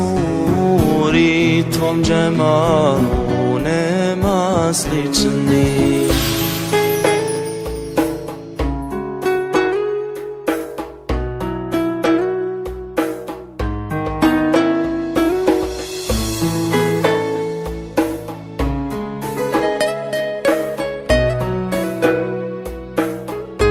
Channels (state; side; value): identical; both; correlation 1.00